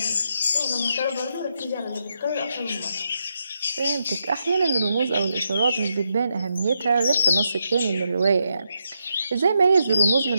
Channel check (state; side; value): inverted; both; correlation -0.82